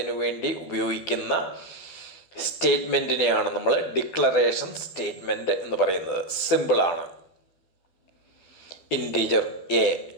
വേണ്ടി ഉപയോഗിക്കുന്ന സ്റ്റേറ്റ്മെൻറ്റിനെയാണ് നമ്മൾ ഡിക്ലറേഷൻ സ്റ്റേറ്റ്മെൻറ്റ് എന്ന് പറയുന്നത്. സിമ്പിളാണ്. ഇൻറ്റീജർ എ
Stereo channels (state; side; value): late; right; 12 ms